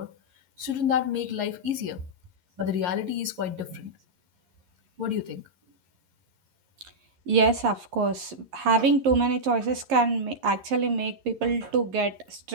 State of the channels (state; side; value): late; left; 11 ms